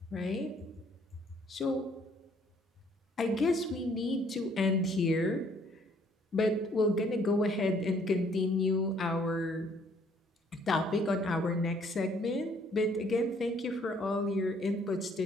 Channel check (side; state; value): both; normal; correlation 0.63